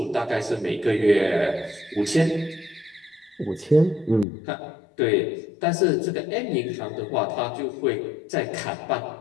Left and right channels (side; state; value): right; drops out; at 4.2 s